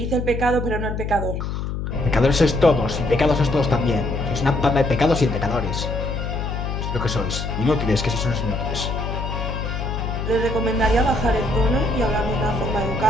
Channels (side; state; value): left; noise; hum, 3 dB below the sound